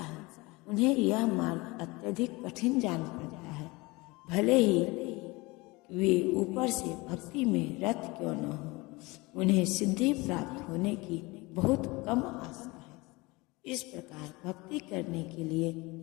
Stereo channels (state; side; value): quieter; right; 23.8 dB